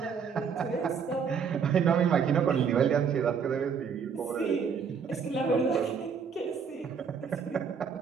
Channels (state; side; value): quieter; left; 6.5 dB